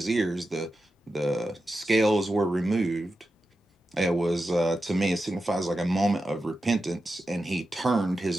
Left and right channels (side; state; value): both; normal; correlation 0.90